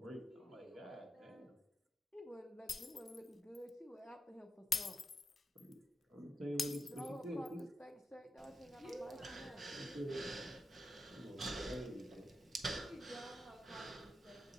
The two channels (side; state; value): both; normal; correlation 0.87